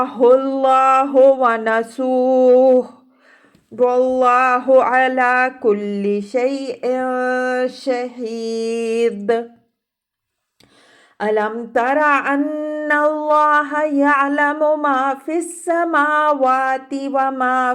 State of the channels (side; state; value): both; identical; correlation 1.00